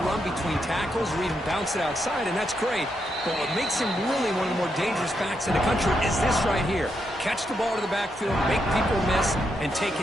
between tackles or even bounce it outside, and that's great. But what makes him really one of the more dangerous backs in the country is this right here. Catch the ball to the backfield, make people miss, and take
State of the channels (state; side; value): normal; both; correlation 0.81